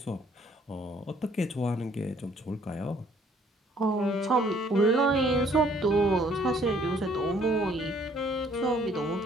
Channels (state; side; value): normal; both; correlation 0.61